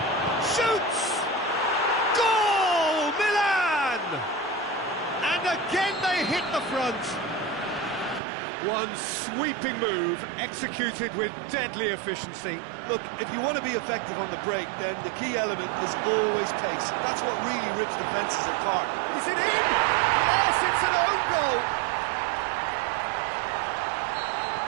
Shoots! Goal! Milan! And again they hit the front. One sweeping move, executed with deadly efficiency. Look, if you want to be effective on the break, then the key element is always pace. That's what really rips defences apart. Is it in? Yes, it's an own goal.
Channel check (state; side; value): drops out; left; at 8.2 s